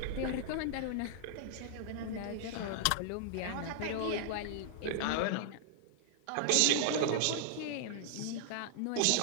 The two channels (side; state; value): both; different; correlation -0.01